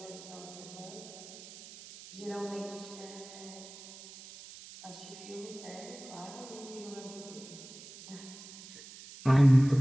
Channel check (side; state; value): right; noise; hiss, 16 dB below the sound